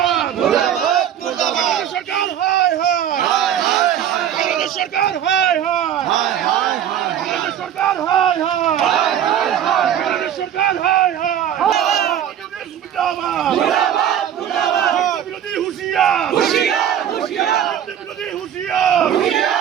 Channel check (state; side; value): quieter; left; 9.9 dB